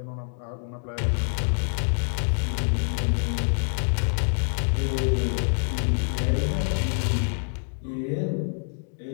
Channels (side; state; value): right; silent; 61 dB below the other